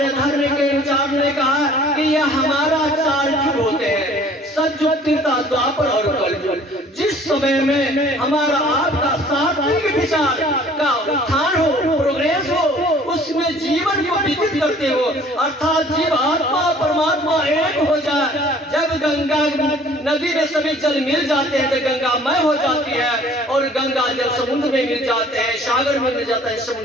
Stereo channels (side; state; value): both; normal; correlation 0.53